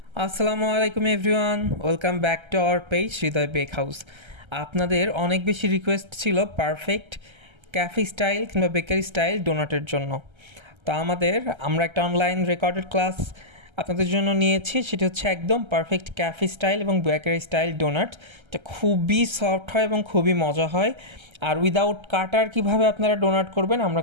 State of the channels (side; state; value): left; late; 1.3 ms